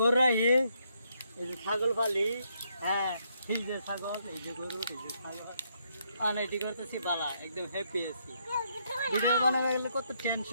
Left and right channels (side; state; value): both; inverted; correlation -0.74